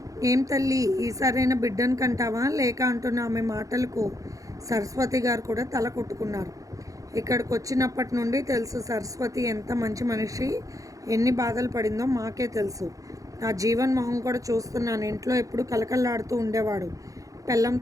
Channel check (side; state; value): left; late; 0.16 ms